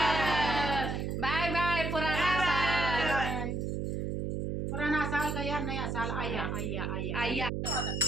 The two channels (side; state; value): right; noise; hum, 2 dB below the sound